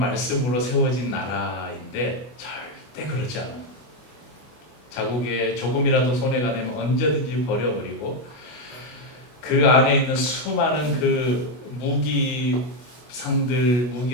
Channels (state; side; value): late; right; 25 ms